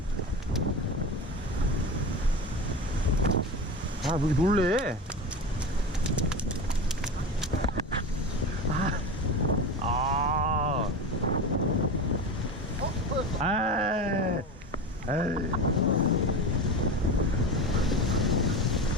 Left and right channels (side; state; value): both; normal; correlation 0.26